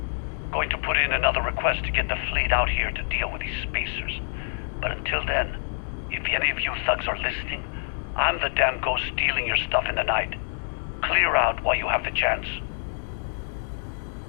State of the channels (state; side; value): silent; right; 57 dB below the other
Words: Going to put in another request to get the fleet out here to deal with these spacers. But until then, if any of you thugs are listening, I'm the damn ghost stealing your stuff in the night. Clear out while you have the chance.